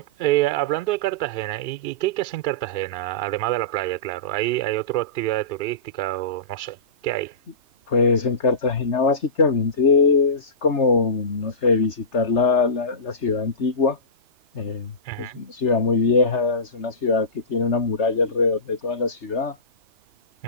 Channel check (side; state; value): right; late; 3.3 ms